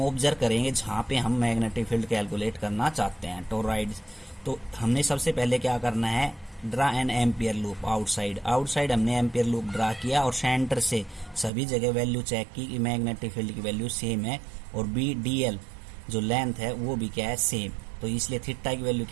ऑब्जर्व करेंगे जहाँ पे हम मैग्नेटिक फील्ड कैलकुलेट करना चाहते हैं टोरॉइड। तो हमने सबसे पहले क्या करना है, draw an Ampere loop outside हमने एम्पियर लूप ड्रा किया, और सेंटर से सभी जगह वैल्यू चेक की कि मैग्नेटिक फील्ड की वैल्यू सेम है, और बी डी एल जो लेंथ है वो भी क्या है, सेम। तो इसलिए थीटा की वैल्यू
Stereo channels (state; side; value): drops out; left; at 11.5 s